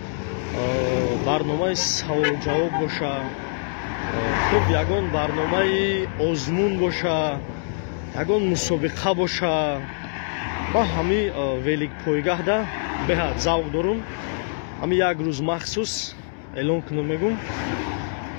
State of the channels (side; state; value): right; silent; digital silence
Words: барномаи саволу-ҷавоб боша, хуб ягон барномаи озмун боша, ягон мусобиқа боша. ман ҳамин великпойгаҳда беҳад завқ дорам. ҳамин як рӯз махсус эълон кунам, мегум